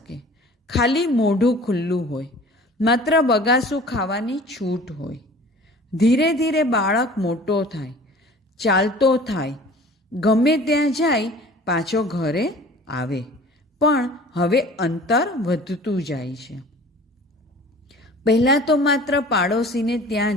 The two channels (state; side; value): normal; both; correlation 0.45